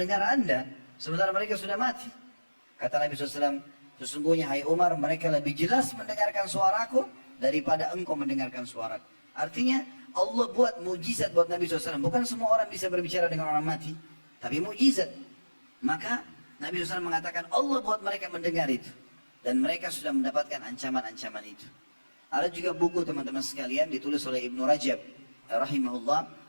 Anda sementara mereka sudah mati? Kata Nabi SAW, sesungguhnya hai Umar, mereka lebih jelas mendengarkan suaraku daripada engkau mendengarkan suaraku. Artinya Allah buat mujizat buat Nabi SAW. Bukan semua orang bisa berbicara dengan orang mati, tapi mujizat. Maka Nabi SAW mengatakan Allah buat mereka mendengar itu, dan mereka sudah mendapatkan ancaman-ancaman itu. Ada juga buku teman-teman sekalian ditulis oleh Ibnu Rajab rahimahullah.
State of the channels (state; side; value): inverted; both; correlation -1.00